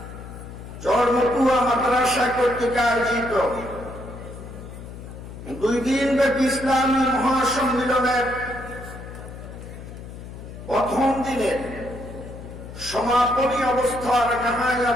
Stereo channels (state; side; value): noise; left; hum, 13 dB below the sound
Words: চরমতুয়া মাদ্রাসা কর্তৃক আয়োজিত 2 দিনব্যাপী ইসলামী মহাসম্মেলনের প্রথম দিনের সমাপনী অবস্থার